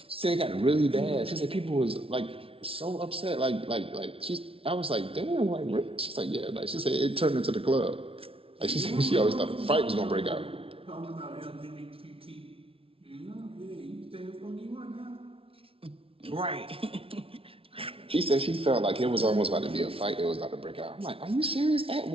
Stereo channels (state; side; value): late; left; 0.26 ms